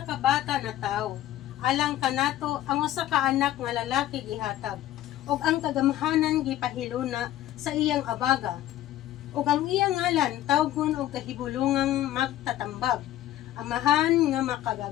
ka bata na tawo. Alang kanato ang usa ka anak nga lalaki gihatag. Ug ang kagamhanan gipahiluna sa iyang abaga. Ug ang iyang ngalan tawgon og kahibulungang magtatambag. Amahan nga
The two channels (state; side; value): quieter; right; 13.5 dB